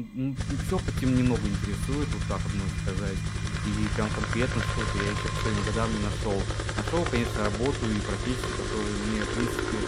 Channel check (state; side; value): identical; both; correlation 1.00